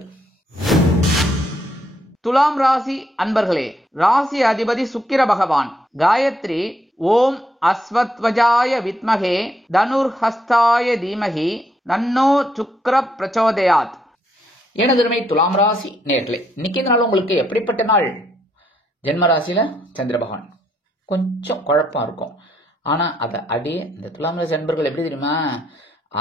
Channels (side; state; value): both; normal; correlation 0.74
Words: துலாம் ராசி அன்பர்களே, ராசி அதிபதி சுக்கிர பகவான். காயத்ரி ஓம் அஸ்வத்வஜாய வித்மகே தனுர்ஹஸ்தாய தீமகி தன்னோ சுக்ர பிரச்சோதயாத். எனதுமை துலாம் ராசி நேர்களே, இன்னைக்கு நாள் உங்களுக்கு எப்படிப்பட்ட நாள்? ஜென்ம ராசியில சந்திர பகவான் கொஞ்சம் குழப்பம் இருக்கும். ஆனா அதை அடியே இந்த துலாம் ராசி அன்பர்கள் எப்படி தெரியுமா,